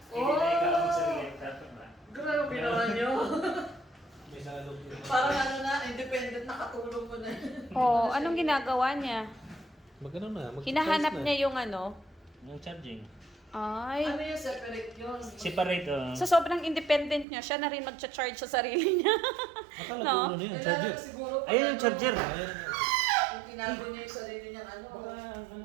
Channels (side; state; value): left; drops out; at 17.2 s